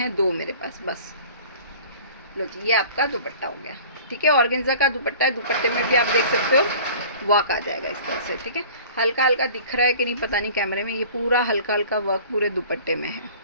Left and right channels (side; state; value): both; inverted; correlation -0.45